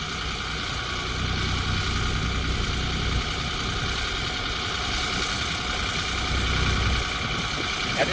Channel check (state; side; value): identical; both; correlation 1.00